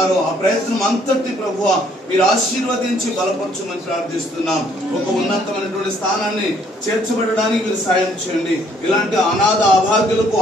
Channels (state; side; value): normal; both; correlation 0.64